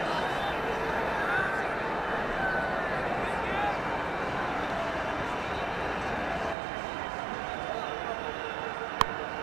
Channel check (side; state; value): left; drops out; at 6.6 s